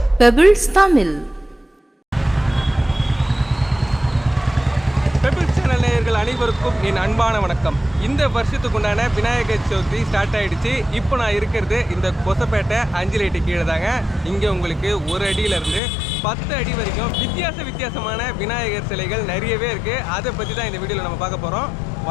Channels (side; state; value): right; drops out; at 15.8 s